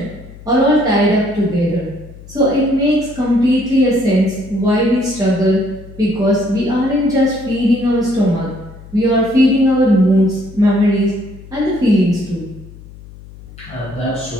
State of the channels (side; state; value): left; noise; hum, 18 dB below the sound